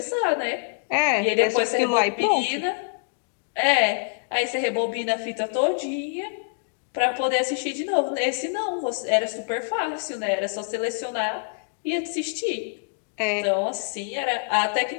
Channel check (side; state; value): right; silent; digital silence